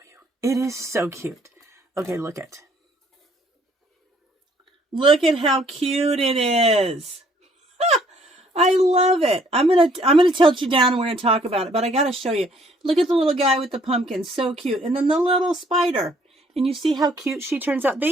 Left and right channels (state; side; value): normal; both; correlation 0.63